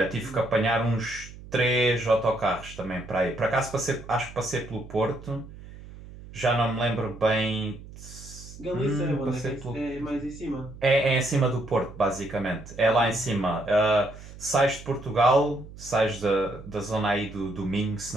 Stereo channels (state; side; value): noise; right; hum, 16 dB below the sound